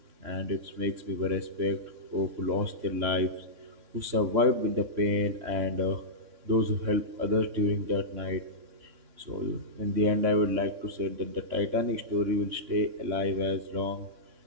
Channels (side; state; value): left; late; 3.6 ms